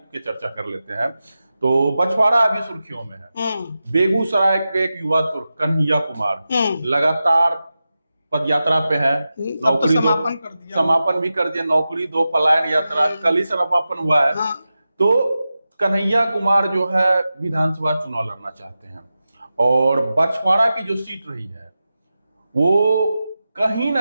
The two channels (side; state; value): both; inverted; correlation -0.93